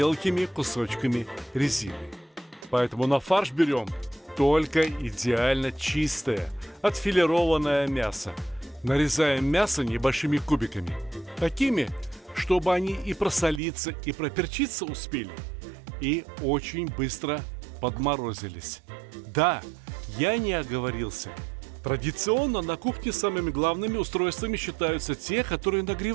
кусочками резины. Поэтому на фарш берем только идеально чистое, отфилированное мясо. Нарезаем мясо небольшими кубиками, такими, чтобы они и просолиться, и проперчиться успели, и очень быстро подморозились. Да, я не оговорился. Традиционно на кухне самыми главными устройствами считаются те, которые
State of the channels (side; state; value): left; drops out; at 13.6 s